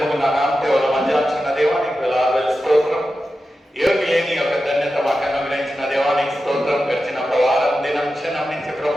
ముగ్గురు నా నామదేవుల మధ్యాచిన దేవానికి వేలాది స్తోత్రం. యోగి లేని యొక్క ధన్యత మాకు అనుగ్రహించిన దేవానికి స్తోత్రం. గడిచిన వారం దినం క్షణం నుంచి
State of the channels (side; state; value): both; normal; correlation 0.92